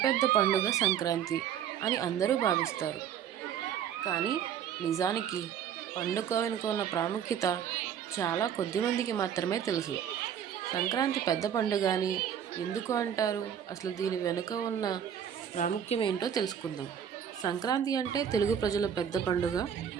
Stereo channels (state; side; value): quieter; left; 8.8 dB